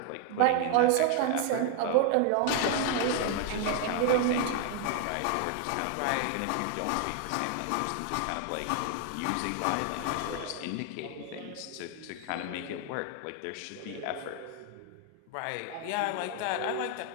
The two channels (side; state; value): both; different; correlation 0.00